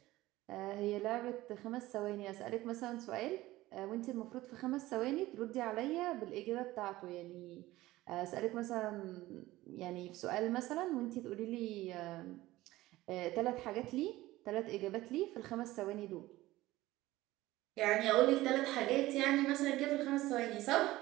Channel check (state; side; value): quieter; left; 17.4 dB